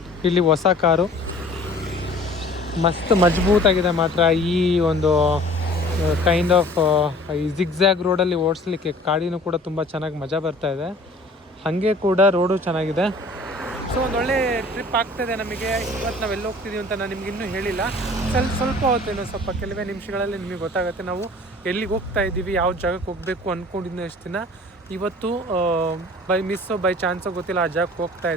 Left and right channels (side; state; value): both; normal; correlation 0.48